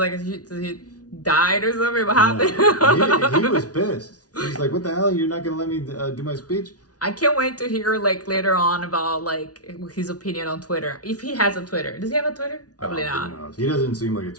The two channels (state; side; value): late; right; 0.68 ms